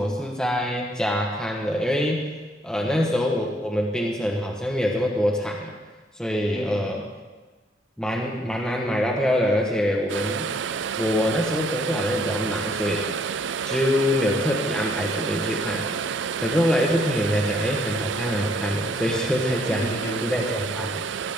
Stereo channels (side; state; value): both; normal; correlation 0.66